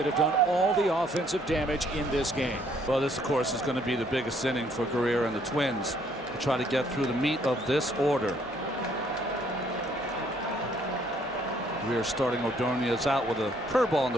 have done all the offensive damage in this game. Well, this, of course, is going to be the biggest inning for Guerrier and the Twins to try to get through the meat of this order. Guerrier starting Ordonez out with a curveball in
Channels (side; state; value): both; normal; correlation 0.65